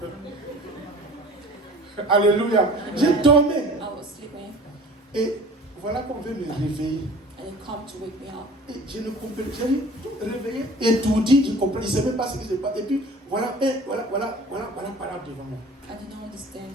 Alléluia. Je dormais. I was sleeping, Et voilà qu'on veut me réveiller. and it come to wake me up. Et je ne comprenais pas. J'ai tout réveillé et tout dit, je comprenais. Je ne savais même pas ce qui se passe. Et puis voilà parole devant moi. I did not understand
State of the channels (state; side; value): normal; both; correlation 0.44